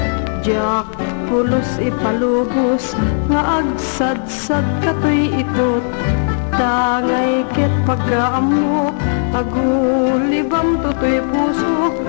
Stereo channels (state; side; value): silent; right; digital silence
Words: jak pulos ipalubos nga agsadsad katoy ikot. Tangay ket pagkaamok agulibam totoy puso,